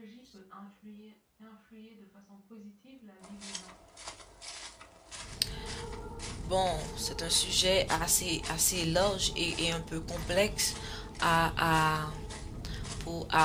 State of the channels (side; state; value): both; identical; correlation 1.00